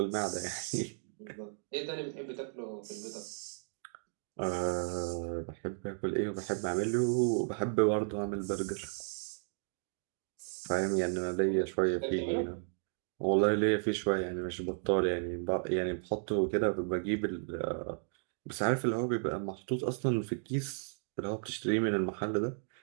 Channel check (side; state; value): left; silent; digital silence